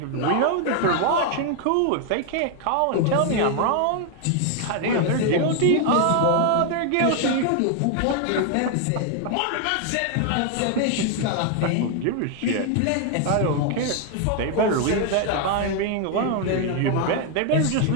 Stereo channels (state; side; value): different; both; correlation 0.00